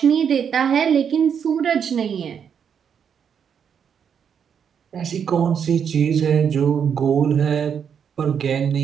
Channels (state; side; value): quieter; left; 7.6 dB